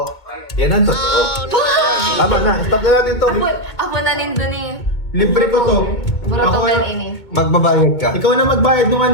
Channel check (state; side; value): late; right; 2.2 ms